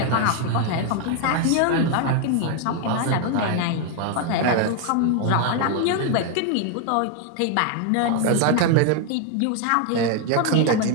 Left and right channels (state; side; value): different; both; correlation 0.01